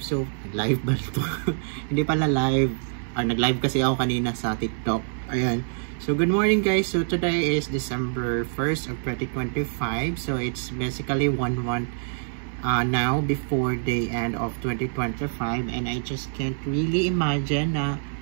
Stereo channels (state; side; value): silent; left; 61 dB below the other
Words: live ba ito? Hindi pala live. Nag-live kasi ako kanina sa TikTok. Ayan. So, good morning guys. So, today is December 1st of 2025. So, it's basically 1 month now before the end of 2025. And I just can't really imagine na,